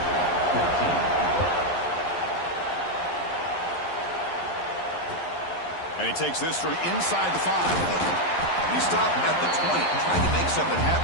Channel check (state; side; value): late; right; 11 ms